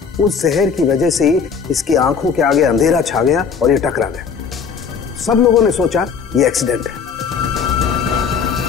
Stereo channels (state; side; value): quieter; right; 6.2 dB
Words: उस जहर की वजह से ही इसकी आंखों के आगे अंधेरा छा गया और ये टकरा गया। सब लोगों ने सोचा ये एक्सीडेंट है।